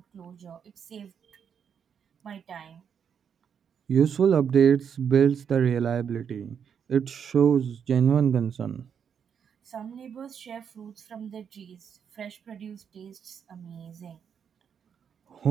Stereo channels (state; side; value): quieter; left; 7.5 dB